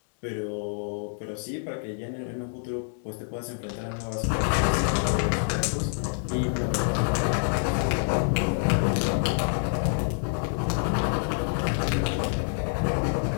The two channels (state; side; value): silent; right; digital silence